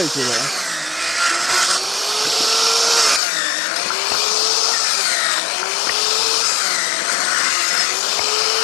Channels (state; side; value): drops out; right; at 3.2 s